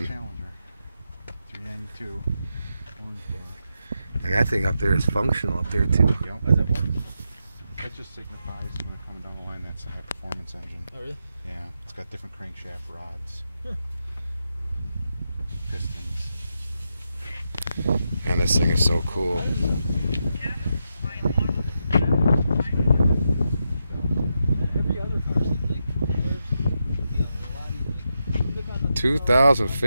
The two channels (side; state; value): both; inverted; correlation -0.85